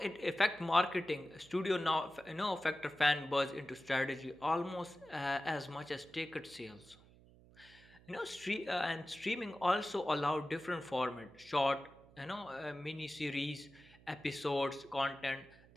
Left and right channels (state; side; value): noise; right; hum, 24 dB below the sound